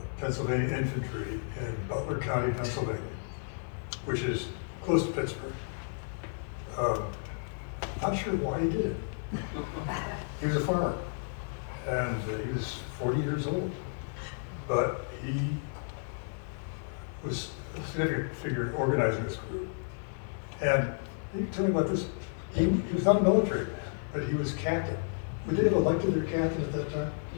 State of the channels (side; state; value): right; silent; 56 dB below the other